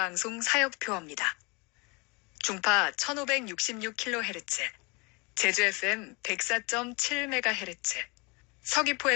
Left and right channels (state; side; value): quieter; right; 29.0 dB